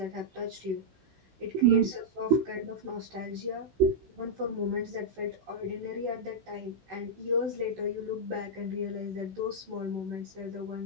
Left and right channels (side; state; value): left; late; 16 ms